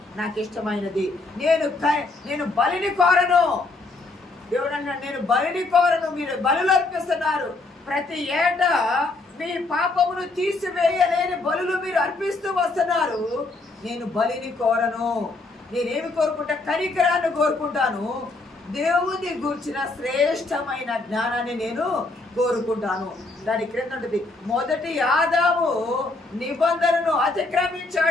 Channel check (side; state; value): right; quieter; 3.3 dB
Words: నాకు ఇష్టమైనది. నేను బలిని కోరను. దేవుడు అన్నాడు, నేను బలిని కోరను. మీరు బలులు అర్పిస్తున్నారు. ప్రతి ఏటా మీ పాపమును తీసివేయలేని బలులు మీరు అర్పిస్తూ వస్తున్నారు. నేను బలిని కోరను. నేనేమి కోరుకుంటా? కనికరాన్ని కోరుకుంటాను. దేవుని గూర్చిన శ్రేష్టమైన జ్ఞానాన్ని నేను కోరుకుంటాను. దాని క్రింద ఉంటుంది, మొదటి ఆదాము నిబంధనను